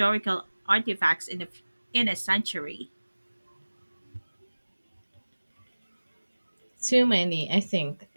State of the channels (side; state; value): both; inverted; correlation -1.00